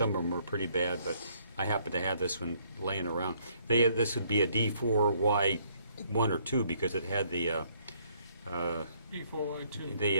of them were pretty bad, but I happened to have this one laying around. This would be a D4Y1 or 2 because it had the D4Y2.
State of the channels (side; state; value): both; inverted; correlation -0.66